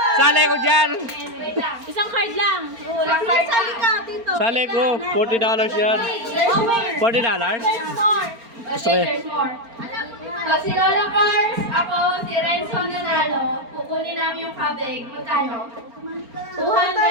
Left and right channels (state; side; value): late; left; 4.3 ms